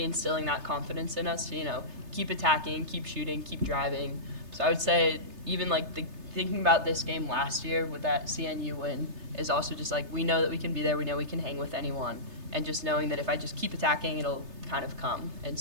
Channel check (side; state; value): left; late; 3.3 ms